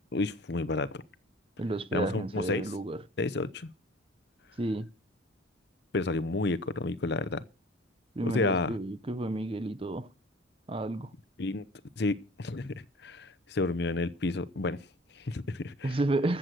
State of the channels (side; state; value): both; normal; correlation 0.46